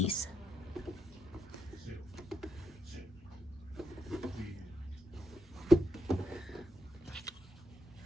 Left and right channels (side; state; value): both; normal; correlation 0.82